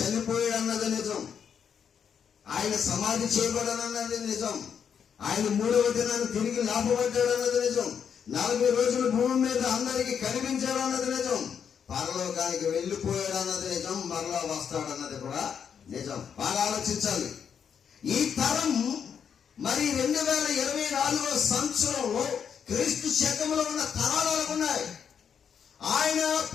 అన్నది నిజం. ఆయన సమాధి చేయబడనన్నది నిజం. ఆయన 3వ దినాన్ని తిరిగి లేపబడ్డాడు అన్నది నిజం. 40 రోజులు భూమి మీద అందరికి కనిపించాడు అన్నది నిజం. పరలోకానికి వెళ్ళిపోయాడు అన్నది నిజం. మరలా వస్తాడు అన్నది కూడా నిజం. బాగా ఆలోచించాలి. ఈ తరం మరి 2024 సంవత్సరంలో క్రీస్తు శకంలో ఉన్న తరాలు ఎలాగున్నాయి? ఆయన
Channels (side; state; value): right; quieter; 7.5 dB